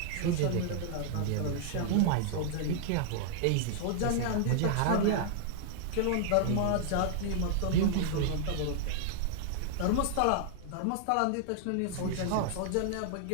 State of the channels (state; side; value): different; both; correlation -0.01